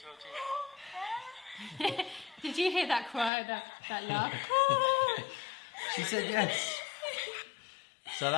Did you hear that cry, that laugh? She said yes. So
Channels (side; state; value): right; drops out; at 3.3 s